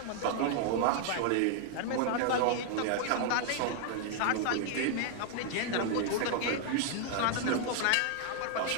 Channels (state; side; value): different; both; correlation 0.00